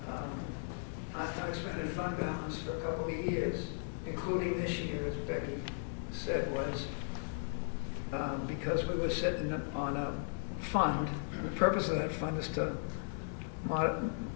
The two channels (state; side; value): silent; right; digital silence